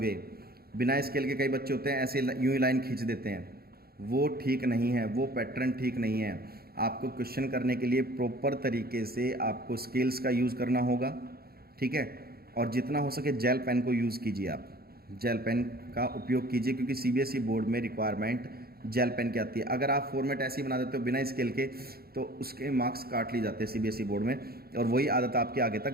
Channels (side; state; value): left; late; 0.45 ms